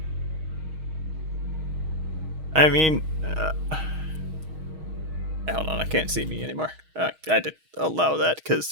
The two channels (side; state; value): left; late; 6.4 ms